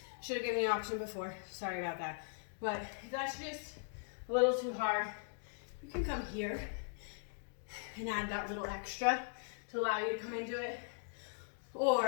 should have given you an option before. Sorry about that. But if that's just a little too hard, you can come here and add that little extra to allow you to come into it.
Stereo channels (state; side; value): silent; right; digital silence